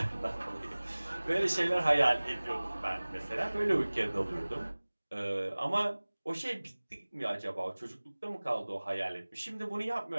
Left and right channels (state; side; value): inverted; both; correlation -1.00